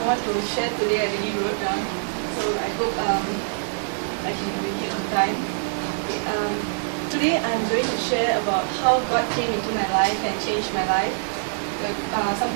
want to share today. I really wrote down, so I hope I can make it on time. Okay, today I'm going to share about how God came into my life and changed my life.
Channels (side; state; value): left; silent; 62 dB below the other